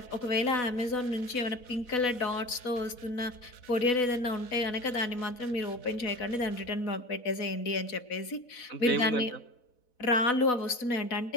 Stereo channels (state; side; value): late; right; 4.1 ms